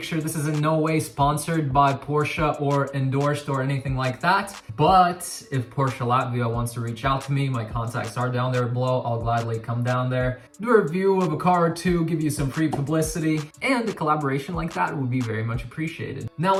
This is in no way sponsored by Porsche or endorsed or anything like that. But if Porsche Latvia wants to reach out to me, my contacts are down there below. I'll gladly come down there, do a review of a car or two, give you some free publicity, and a collaboration like that would be very much appreciated. Now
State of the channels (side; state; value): both; identical; correlation 1.00